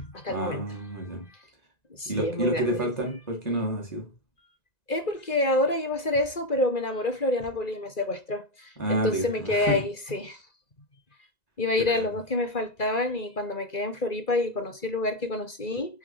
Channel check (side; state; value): right; late; 2.4 ms